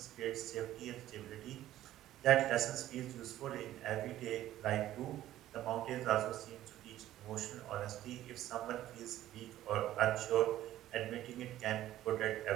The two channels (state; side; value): quieter; left; 13.6 dB